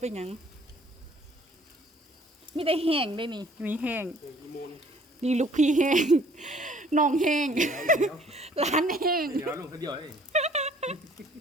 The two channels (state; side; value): normal; both; correlation 0.57